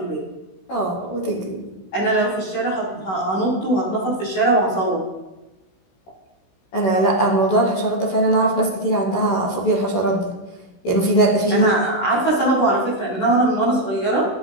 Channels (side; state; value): right; late; 16 ms